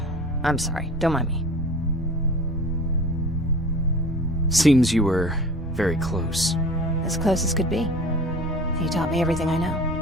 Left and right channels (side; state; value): both; normal; correlation 0.41